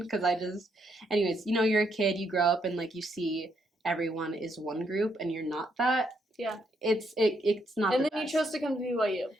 because anyways, you know, you're a kid, you grow up, and, like, you see everyone is one group, and you're not that. Yeah. It's not. And then you chose to come to BYU.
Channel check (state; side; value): normal; both; correlation 0.75